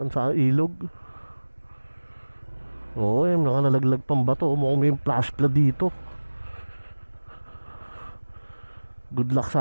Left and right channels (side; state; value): both; inverted; correlation -1.00